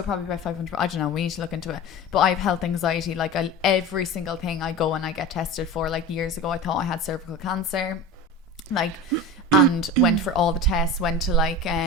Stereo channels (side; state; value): both; normal; correlation 0.31